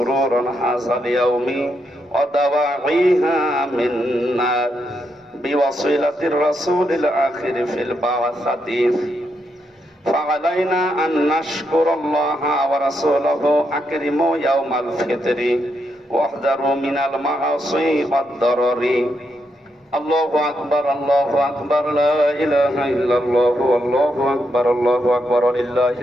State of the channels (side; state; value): both; normal; correlation 0.81